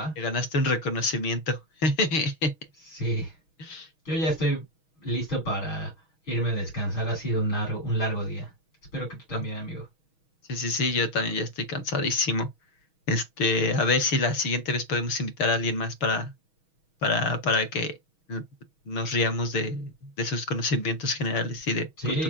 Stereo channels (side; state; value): right; late; 6.3 ms